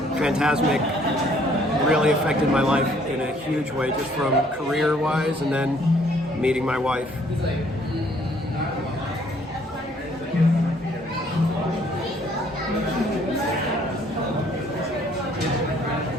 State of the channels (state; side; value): normal; both; correlation 0.62